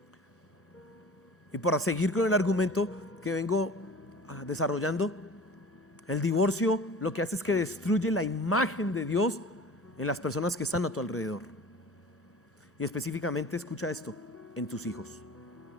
Y para seguir con el argumento que vengo desarrollando, el divorcio lo que hace es que destruye la imagen de Dios en las personas que están a tu alrededor. Y específicamente, escucha esto, en tus hijos.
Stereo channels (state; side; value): normal; both; correlation 0.41